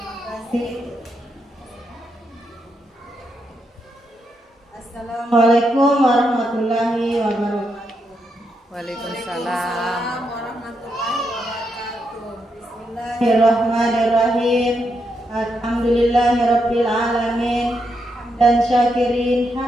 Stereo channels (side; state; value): both; normal; correlation 0.82